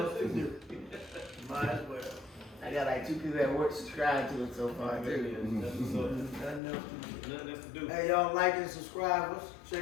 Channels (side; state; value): right; drops out; at 6.6 s